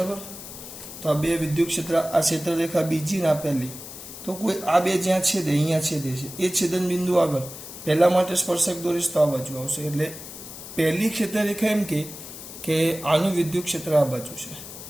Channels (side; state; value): left; noise; hiss, 13 dB below the sound